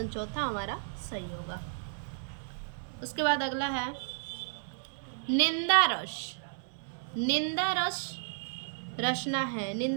चौथा हमारा सही होगा। उसके बाद अगला है निंदा रस रचना है।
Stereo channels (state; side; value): silent; left; digital silence